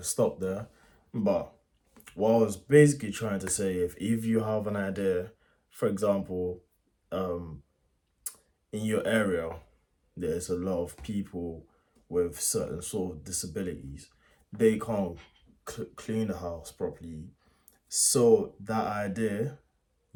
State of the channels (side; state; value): both; identical; correlation 1.00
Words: stopped there. But what I was basically trying to say, if you have an idea, for example, um, in your area, there's a lot of people with certain sort of disabilities. They can't clean the house properly. So that idea,